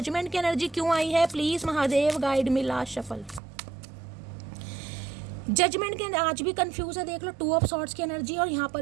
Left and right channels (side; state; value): left; drops out; at 3.4 s